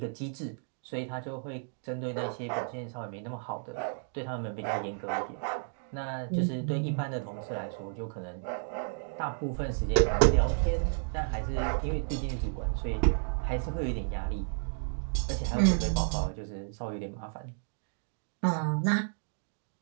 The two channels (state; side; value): silent; left; digital silence